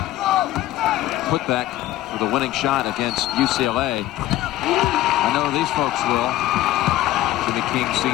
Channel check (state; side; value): quieter; right; 14.9 dB